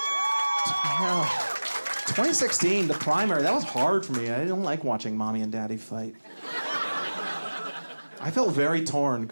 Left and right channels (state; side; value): inverted; both; correlation -1.00